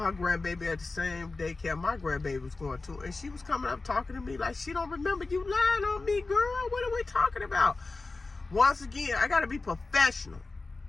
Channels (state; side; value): quieter; right; 3.6 dB